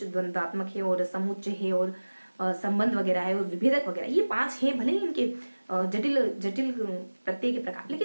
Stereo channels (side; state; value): both; inverted; correlation -1.00